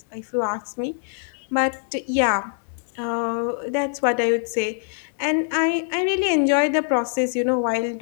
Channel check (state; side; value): silent; right; digital silence